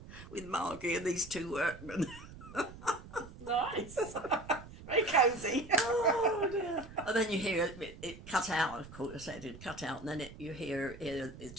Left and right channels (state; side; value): noise; right; rumble, 15 dB below the sound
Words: with Margie and these two workmen. Nice. Very cosy. Oh dear. And then you hear it cut out, of course. I said it cut out, and then you hear a